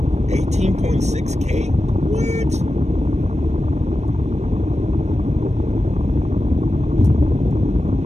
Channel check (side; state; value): left; late; 0.33 ms